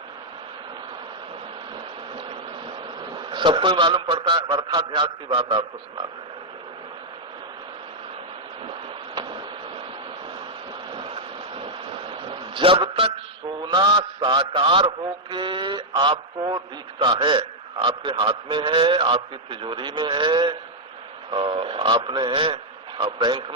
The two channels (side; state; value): both; normal; correlation -0.03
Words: सबको ही मालूम पड़ता है। अर्थाध्यास की बात आपको सुनाते हैं। जब तक सोना साकार होके आपको दिखता है, आपके हाथ में है, आपकी तिजोरी में है, आपने बैंक